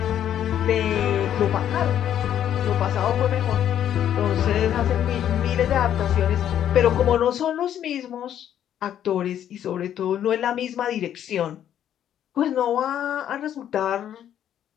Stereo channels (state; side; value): quieter; right; 10.4 dB